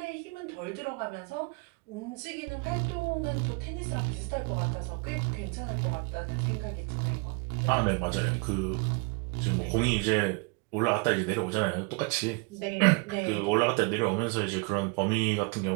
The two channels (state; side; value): quieter; left; 31.5 dB